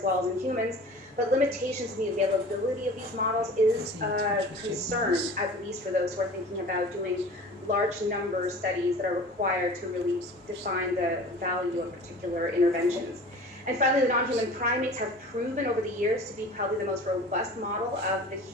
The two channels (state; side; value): normal; both; correlation 0.40